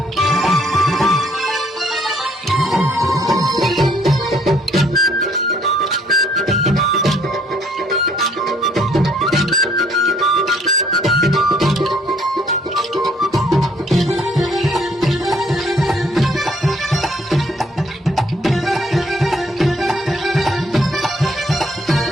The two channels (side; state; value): both; normal; correlation 0.64